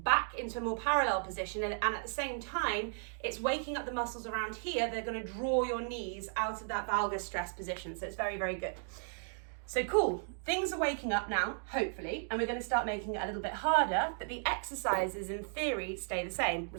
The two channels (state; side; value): silent; left; 54 dB below the other